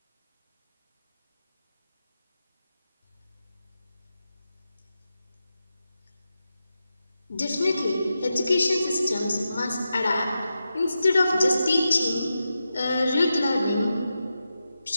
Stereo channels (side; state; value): both; inverted; correlation -0.89